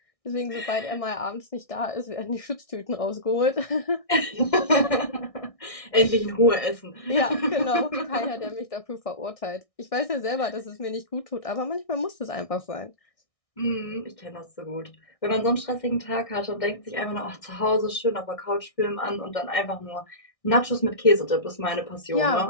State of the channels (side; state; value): right; late; 1.6 ms